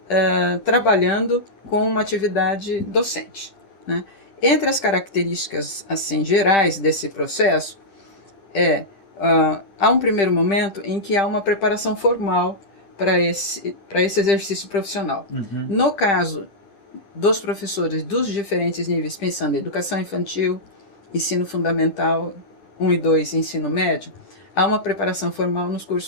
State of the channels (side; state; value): right; late; 10 ms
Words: trabalhando com uma atividade docente. Né? Entre as características assim, gerais desse processo, há um primeiro momento em que há uma preparação formal para esse exercício profissional. No caso dos professores dos diferentes níveis, pensando em educação infantil, ensino fundamental 1 e 2, ensino médio, há uma preparação formal nos